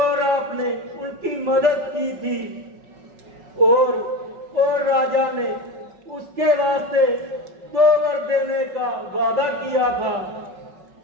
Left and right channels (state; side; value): late; left; 5.4 ms